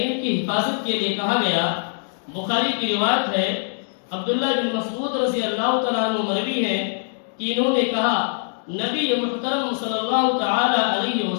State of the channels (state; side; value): silent; right; digital silence